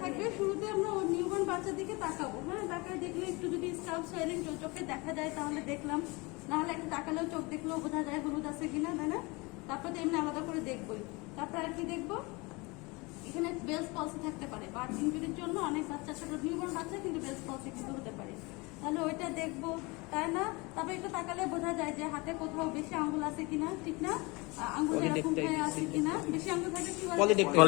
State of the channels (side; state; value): right; quieter; 25.9 dB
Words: থাকবে, শুরুতে আমরা ওর নিউবর্ন বাচ্চার দিকে তাকাবো। হ্যাঁ, তাকায় দেখলে একটু যদি স্কাল্প সোয়েলিং চোখে দেখা যায় তাহলে দেখলাম, নাহলে একটু তাকালেও চোখ দেখলেও বোঝা যায় হলুদ আছে কিনা, তাই না? তারপর তো এমনি আলাদা করে দেখবোই। তারপর আর কি দেখবো, এখানে বেলস পলসি থাকতে পারে, বার্থ ইনজুরির জন্য অনেক বাচ্চা, ছোট নিউবর্ন বাচ্চা কিন্তু বেলস পলসি কিন্তু হতে পারে, তাহলে ওইটা দেখবো, তাই না? তারপর একটু তাকালে বোঝা যায় যে হাতে কোথাও বেশি আঙ্গুল আছে কিনা, ঠিক না? আঙ্গুল এরকম হয়ে আছে কিনা, বেশি আঙ্গুল থাকলে কি বলে?